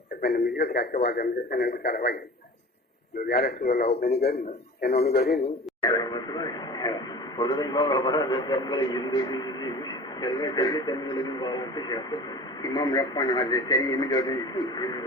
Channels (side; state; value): both; normal; correlation 0.38